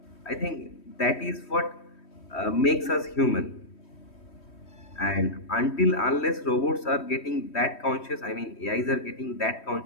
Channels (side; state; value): right; late; 3.1 ms